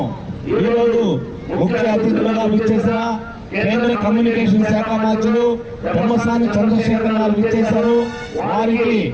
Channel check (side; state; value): both; identical; correlation 1.00